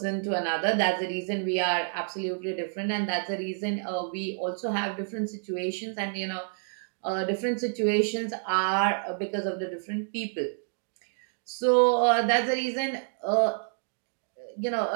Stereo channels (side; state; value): left; silent; digital silence